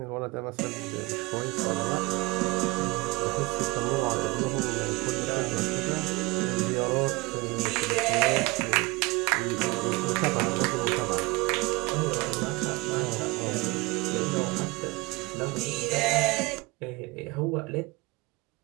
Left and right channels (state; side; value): quieter; left; 23.3 dB